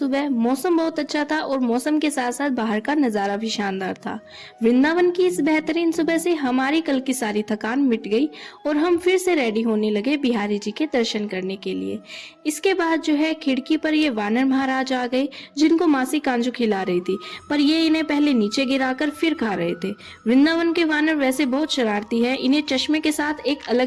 मौसम बहुत अच्छा था और मौसम के साथ साथ बाहर का नजारा भी शानदार था। वृंदावन की इस बेहतरीन सुबह से हमारी कल की सारी थकान मिट गई और हम फिर से रेडी होने लगे बिहारी जी के दर्शन करने के लिए। इसके बाद जो है खिड़की पर ये वानर महाराज आ गए, जिनको मासी कांजू खिला रही थी, पर ये इन्हें पहले नीचे गिराकर फिर खा रहे थे। वृंदावन के वानर वैसे बहुत शरारती है, इन्हें चश्मे के साथ एक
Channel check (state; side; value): identical; both; correlation 1.00